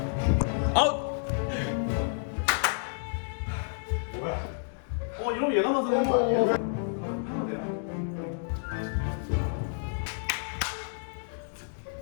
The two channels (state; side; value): silent; right; digital silence